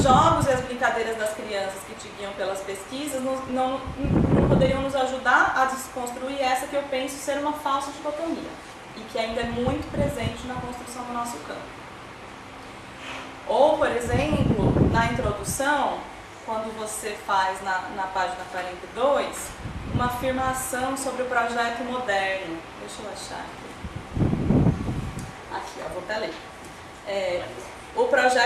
jogos e as brincadeiras das crianças que te guiam pelas pesquisas não poderiam nos ajudar a desconstruir essa que eu penso ser uma falsa dicotomia e que ainda é muito presente na construção do nosso campo. Ou, por exemplo, na introdução, quando você faz na página 42, uma afirmação sobre o projeto moderno. Deixa eu achar aqui. Vou até ler. O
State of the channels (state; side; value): identical; both; correlation 1.00